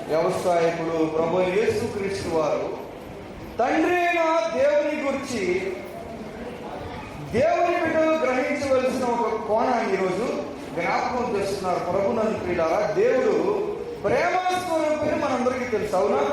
వ్యవసాయకుడు. ప్రభు యేసుక్రీస్తు వారు తండ్రి అయిన దేవుని గురించి దేవుని బిడ్డలు గ్రహించవలసిన ఒక కోణాన్ని ఈరోజు జ్ఞాపకం చేస్తున్నారు. ప్రభునందు ప్రియులారా, దేవుడు ప్రేమస్వరూపిణి మనందరికీ తెలుసు, అవునా?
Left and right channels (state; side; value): identical; both; correlation 1.00